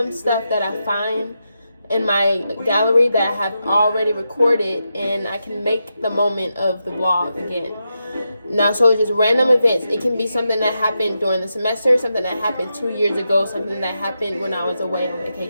stuff that I find in my gallery that I have already recorded, and I can make the moment of the vlog again. Now, so it's just random events. It can be something that happened during the semester, something that happened 2 years ago, something that happened when I was away on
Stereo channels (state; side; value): inverted; both; correlation -0.87